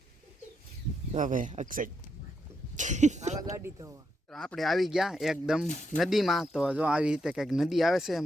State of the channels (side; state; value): both; normal; correlation 0.81